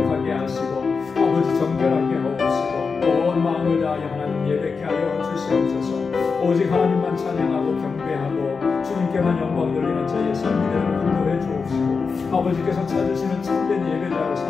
하시고 아버지 정결하게 하옵시고 온 마음을 다하여 하나님 예배케 하여 주시옵소서. 오직 하나님만 찬양하고 경배하고 주님께만 영광 돌리는 저희의 삶이 되도록 인도해 주옵시고, 아버지께서 찾으시는 참된 예배자로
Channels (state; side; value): quieter; right; 5.0 dB